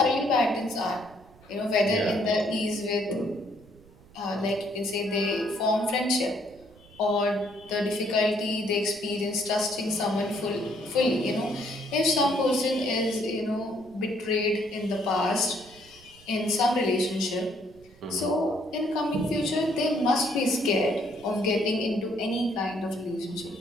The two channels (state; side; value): noise; right; rumble, 25 dB below the sound